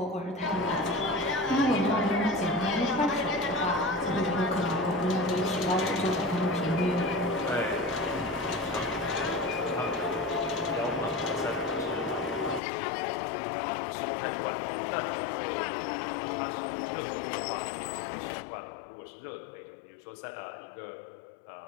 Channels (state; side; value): drops out; right; at 12.6 s